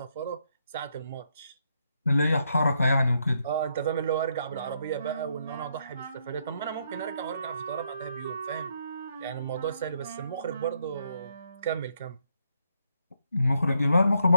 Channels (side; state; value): both; inverted; correlation -0.76